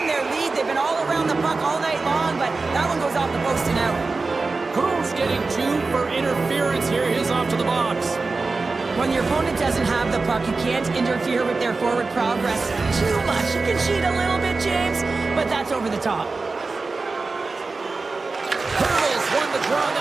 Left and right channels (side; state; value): left; quieter; 3.9 dB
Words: their lead. They've been all around the puck all night long, but that one goes off the post and out. Cruz getting 2 for interference here. He's off to the box. When your opponent doesn't have the puck, you can't interfere with their forward progress too much. You can cheat a little bit, James, but that's over the top. Hurdles won the draw.